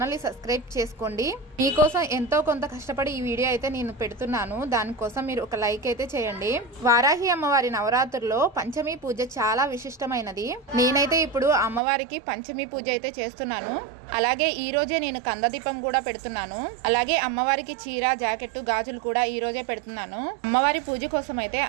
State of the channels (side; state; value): left; drops out; at 11.8 s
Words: ని సబ్స్క్రైబ్ చేసుకోండి. మీకోసం ఎంతో కొంత కష్టపడి ఈ వీడియో అయితే నేను పెడుతున్నాను, దానికోసం మీరు ఒక లైక్ అయితే చేయండి. వారాహి అమ్మవారి నవరాత్రుల్లో పంచమి పూజ చాలా విశిష్టమైనది. నేనైతే ఇప్పుడు అమ్మవారికి పంచమి పూజ అయితే చేస్తున్నాను. అలాగే ఈ రోజే నేను కందదీపం కూడా పెడుతున్నాను. అలాగే అమ్మవారికి చీర, జాకెట్, గాజులు కూడా ఈ రోజే పెడుతున్నాను. అమ్మవారి పూజ కోసం అయితే